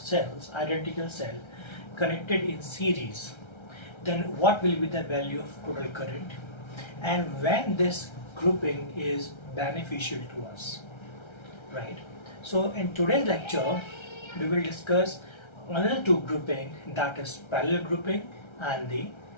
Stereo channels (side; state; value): right; late; 1.3 ms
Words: identical cell, connected in series, then what will be the value of total current, and when this grouping is beneficial to us, right? So in today's lecture, we will discuss another two grouping, that is parallel grouping and the